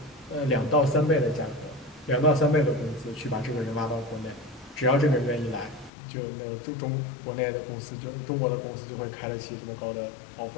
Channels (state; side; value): drops out; right; at 5.9 s